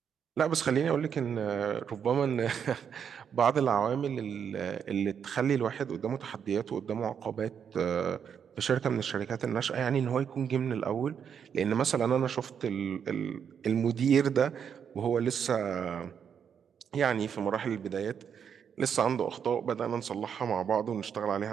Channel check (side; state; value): left; quieter; 7.6 dB